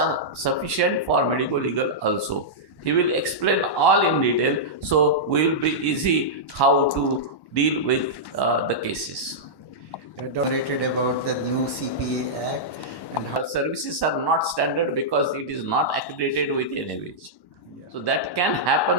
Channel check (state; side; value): late; right; 1.1 ms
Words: sufficient for medico-legal also. He will explain all in detail, so we will be easy how to deal with the cases. Narrated about the new CPA Act and how Services are not standard because it is not accredited with NABH. So that can